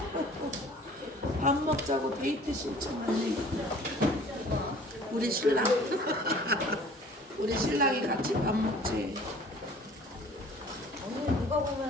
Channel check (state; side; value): normal; both; correlation 0.49